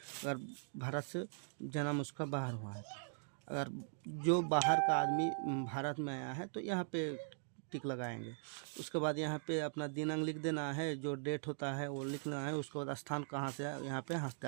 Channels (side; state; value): left; silent; digital silence